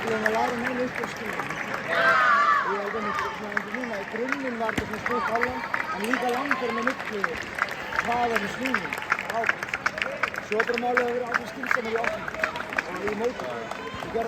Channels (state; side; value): identical; both; correlation 1.00